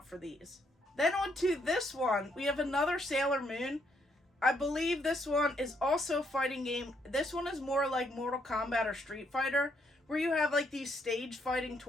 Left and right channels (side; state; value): both; normal; correlation 0.73